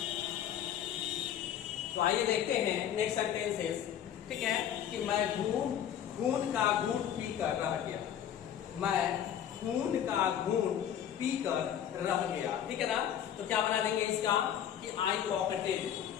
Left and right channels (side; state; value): right; quieter; 9.9 dB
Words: तो आइए देखते हैं नेक्स्ट सेंटेंसेस। ठीक है, कि मैं खून का घूंट पीकर रह गया, मैं खून का घूंट पीकर रह गया। ठीक है ना, तो क्या बना देंगे इसका कि I pocketed,